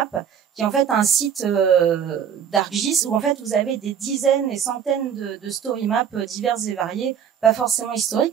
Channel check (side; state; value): left; quieter; 8.2 dB